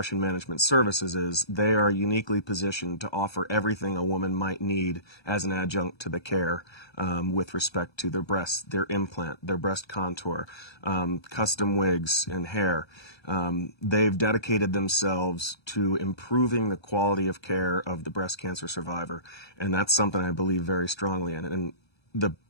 management services is they are uniquely positioned to offer everything a woman might need as an adjunct to the care with respect to their breasts, their implant, their breast contour, custom wigs and hair. They've dedicated themselves to improving the quality of care of the breast cancer survivor, and that's something I believe very strongly in. And the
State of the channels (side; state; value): right; late; 1.2 ms